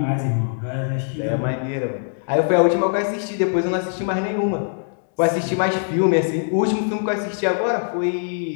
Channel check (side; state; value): right; silent; digital silence